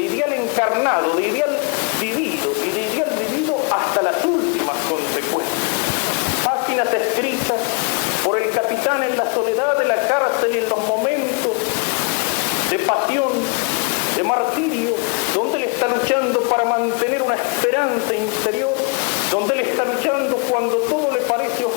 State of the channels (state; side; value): quieter; right; 33.1 dB